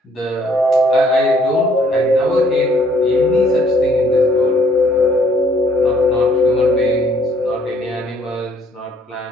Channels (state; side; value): normal; both; correlation 0.63